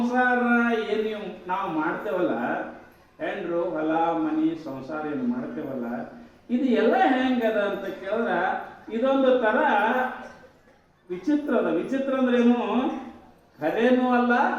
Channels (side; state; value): both; identical; correlation 1.00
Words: ಏನು ನಾವು ಮಾಡ್ತೇವಲ್ಲ, ಹೆಂಡ್ರು ಹೊಲ ಮನಿ ಸಂಸಾರ ಏನು ಮಾಡ್ತೇವಲ್ಲ, ಇದು ಎಲ್ಲ ಹೆಂಗದ ಅಂತ ಕೇಳಿದ್ರ ಇದೊಂದು ತರ ವಿಚಿತ್ರ ಅದ. ವಿಚಿತ್ರ ಅಂದ್ರೇನು? ಖರೇನೂ ಅಲ್ಲ,